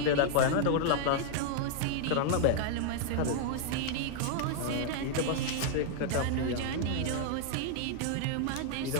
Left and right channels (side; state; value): both; different; correlation -0.01